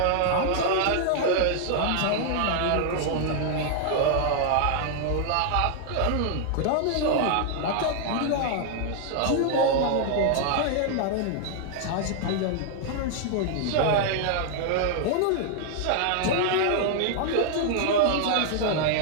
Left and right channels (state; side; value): different; both; correlation 0.00